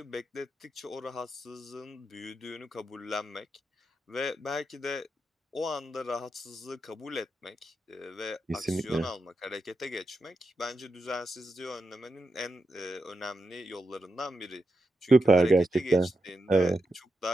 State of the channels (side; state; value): both; normal; correlation 0.87